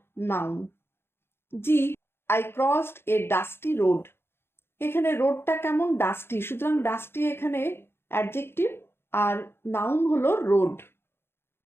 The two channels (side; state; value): right; late; 0.11 ms